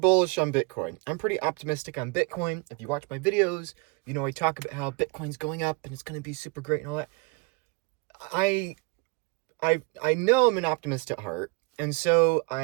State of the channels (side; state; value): left; quieter; 27.7 dB